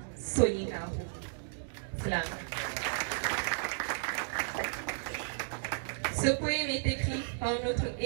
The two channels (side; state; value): left; silent; digital silence